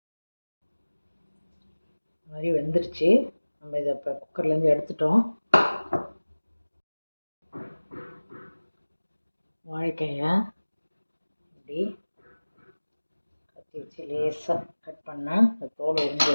இந்த மாதிரி வெந்துருச்சு. நம்ம இதை இப்போ குக்கர்லேருந்து எடுத்துட்டோம். வாழைக்காயை இப்படி கத்தி வச்சு லேசாக கட் பண்ணால் இந்த தோல் உறிஞ்சி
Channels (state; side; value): inverted; both; correlation -1.00